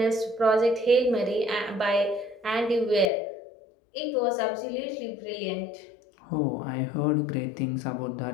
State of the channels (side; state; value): right; drops out; at 3.1 s